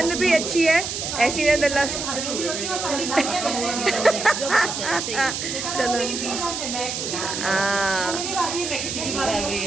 भी अच्छी है, ऐसी नंद अल्लाह। चलो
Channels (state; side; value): noise; right; hiss, 4 dB below the sound